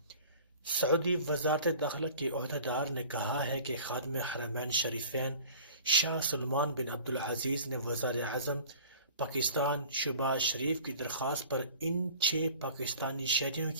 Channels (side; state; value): both; inverted; correlation -0.44